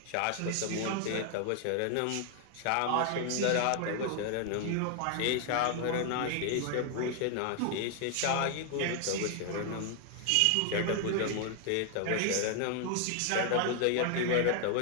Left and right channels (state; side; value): different; both; correlation 0.00